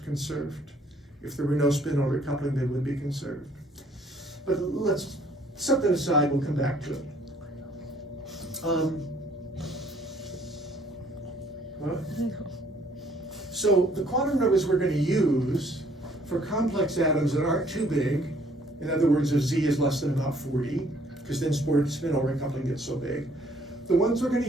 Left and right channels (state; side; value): normal; both; correlation 0.61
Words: conserved. If there were no spin-over coupling, they would be conserved. But let's set that aside, we'll come back to it. What? So the quantum numbers we're going to use for complex atoms that aren't too big, in other words, if Z is less than about 40, because then spin-over coupling gets so big, the ones we're going